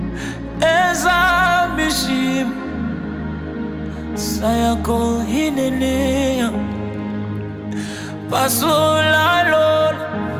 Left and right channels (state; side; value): identical; both; correlation 1.00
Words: Eza Bishim, sayako hinenea. Pasula Lord,